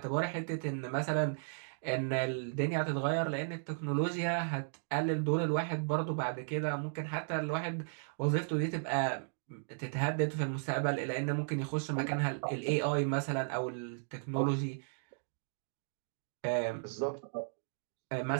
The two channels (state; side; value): silent; left; digital silence